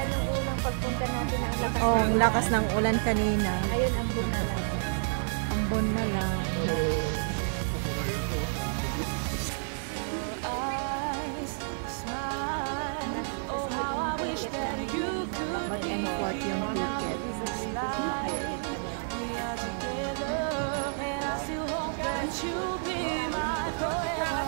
nung unang pagpunta natin ang lakas. Oh, ang lakas ng ulan kanina. Ayun, ambon na lang. Ambon na lang. Mag-import yung ticket.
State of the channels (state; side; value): silent; left; digital silence